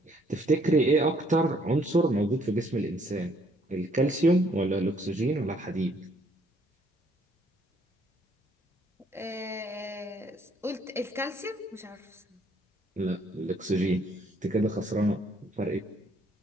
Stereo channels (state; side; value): normal; both; correlation 0.66